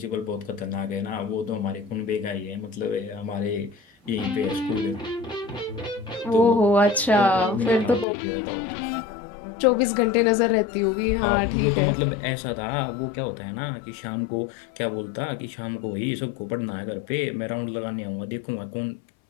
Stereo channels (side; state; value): right; drops out; at 8.1 s